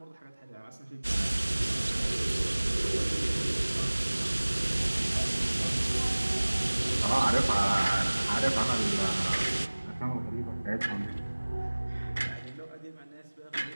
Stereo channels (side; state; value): both; inverted; correlation -1.00